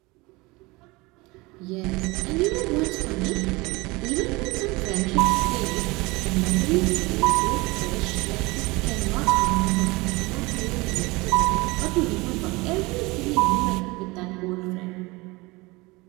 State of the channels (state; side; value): quieter; left; 23.4 dB